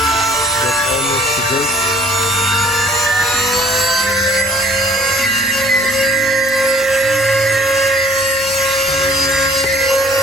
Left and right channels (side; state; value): left; noise; hum, 24 dB below the sound